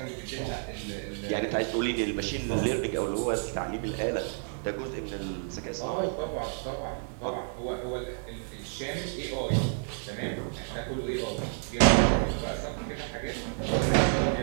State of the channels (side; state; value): left; silent; digital silence